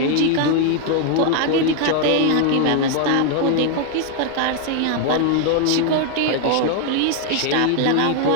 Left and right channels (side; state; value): both; different; correlation 0.00